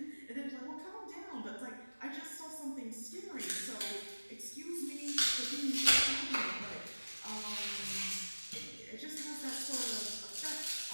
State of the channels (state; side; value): inverted; both; correlation -1.00